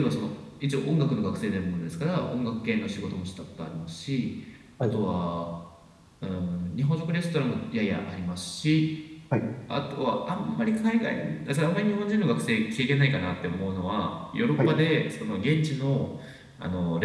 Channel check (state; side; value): identical; both; correlation 1.00